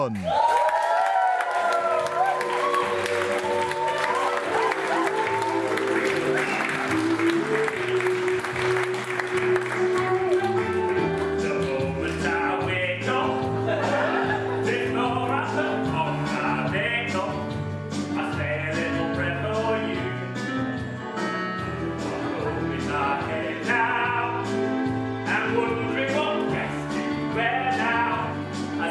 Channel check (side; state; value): both; identical; correlation 1.00